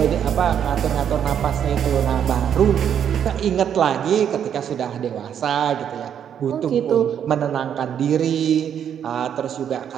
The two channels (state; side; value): quieter; left; 8.8 dB